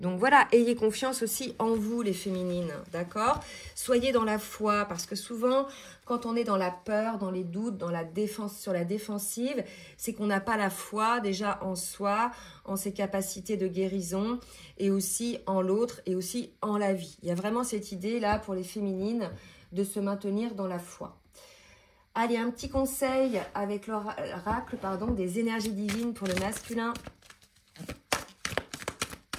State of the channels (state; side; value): identical; both; correlation 1.00